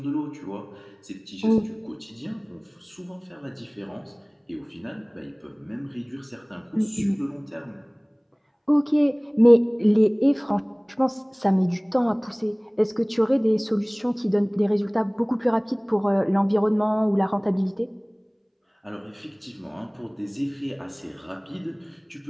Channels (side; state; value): both; identical; correlation 1.00